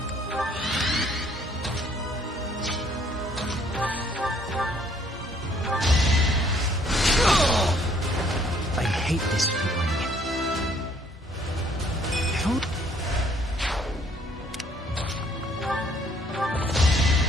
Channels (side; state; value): both; normal; correlation 0.63